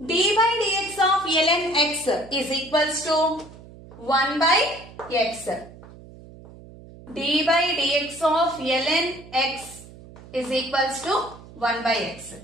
d by dx of ln x is equals to 1 by x. D by dx of ln x is equals to 1 by x.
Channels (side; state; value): right; noise; hum, 19 dB below the sound